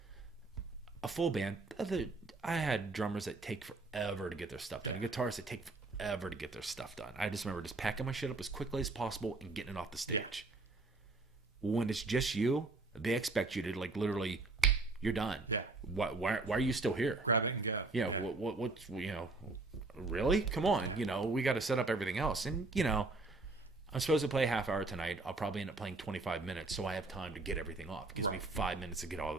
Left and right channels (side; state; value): left; quieter; 3.4 dB